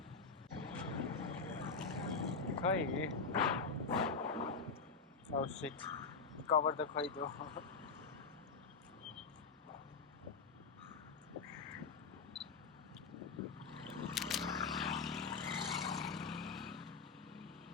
Khoi. Oh shit. Cover the khoi though.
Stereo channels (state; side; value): quieter; right; 4.8 dB